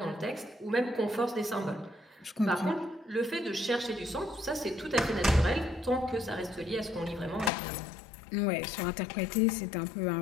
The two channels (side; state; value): right; drops out; at 7.5 s